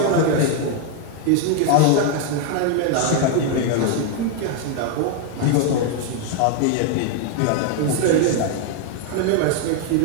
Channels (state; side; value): different; both; correlation 0.00